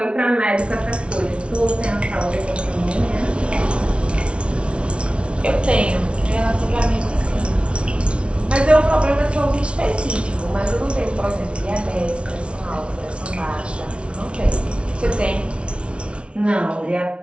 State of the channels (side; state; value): left; late; 0.059 ms